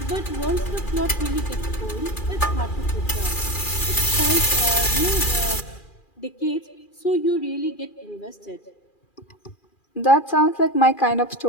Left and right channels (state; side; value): late; right; 2.4 ms